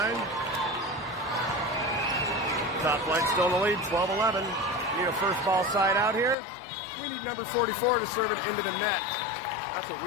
Top flight still in the lead, 12-11. Need a first ball side out here. We need number 44 to serve it into the net. That's what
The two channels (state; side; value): drops out; right; at 6.4 s